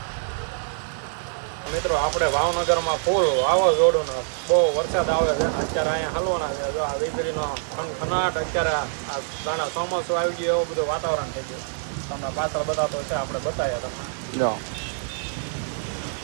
મિત્રો આપણે ભાવનગરમાં ફૂલ વાવાઝોડું ને બહુ વરસાદ આવે છે અત્યારે અહીંયા હલવાના છે જો આ વીજળીનો ખનાટ અત્યારે આ દાણા ચોમાસું આવી ગયું એવું બધું વાતાવરણ થઈ ગયું તમને પાછળ બતાવતો છે આપણે બતાવ્યા તમે જો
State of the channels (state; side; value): silent; left; 61 dB below the other